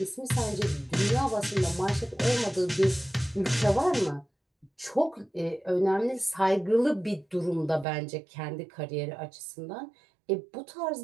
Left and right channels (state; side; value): drops out; left; at 7.9 s